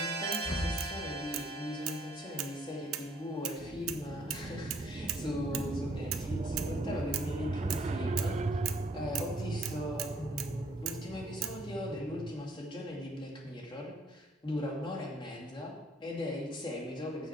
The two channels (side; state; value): both; normal; correlation 0.64